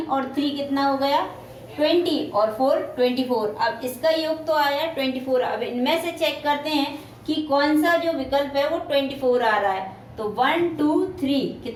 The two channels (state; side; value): identical; both; correlation 1.00